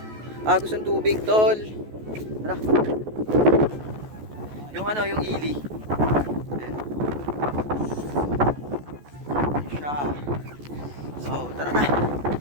Agos ang tubig tol. Tara. Yung yung ili. Siya. So, tara na.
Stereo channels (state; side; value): late; left; 14 ms